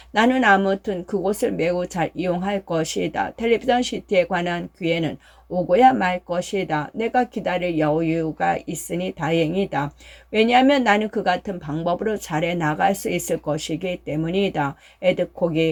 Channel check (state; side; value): identical; both; correlation 1.00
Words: 나는 아무튼 그곳을 매우 잘 이용할 것이다. 텔레비전 시티에 관한 기회는 오고야 말 것이다. 내가 기다릴 여유가 있으니 다행이다. 왜냐하면 나는 그 같은 방법으로 잘해 나갈 수 있을 것이기 때문이다.